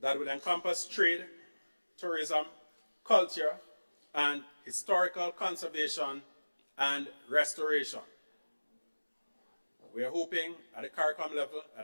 that will encompass trade, tourism, culture, and historical conservation and restoration. We are hoping at the CARICOM level, at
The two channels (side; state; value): both; inverted; correlation -1.00